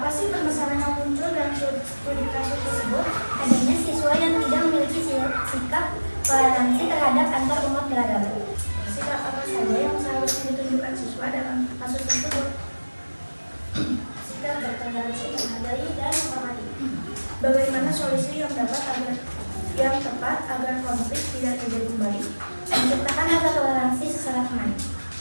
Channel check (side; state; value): both; inverted; correlation -1.00